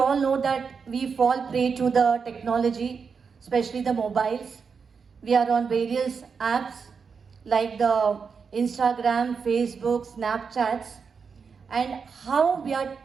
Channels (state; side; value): quieter; left; 5.7 dB